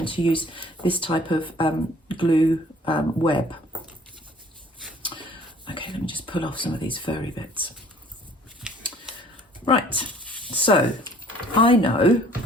to use this type of glue web. Okay, let me just pull off some of these furry bits. Right, so I know,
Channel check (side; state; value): both; normal; correlation 0.54